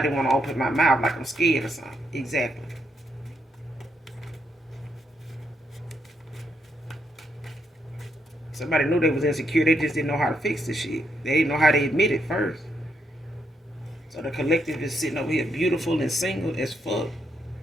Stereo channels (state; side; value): normal; both; correlation 0.78